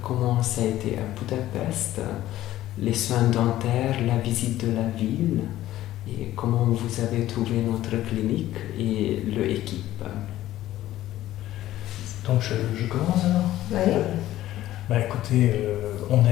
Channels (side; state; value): right; quieter; 14.3 dB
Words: comment ça a été à Budapest, les soins dentaires, la visite de la ville et comment vous avez trouvé notre clinique et l'équipe. Donc je commence alors. Oui. Écoutez, on a